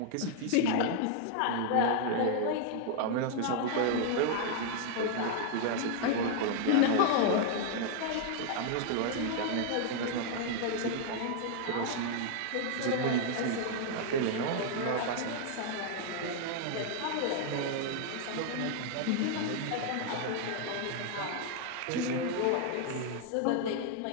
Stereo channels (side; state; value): both; different; correlation 0.00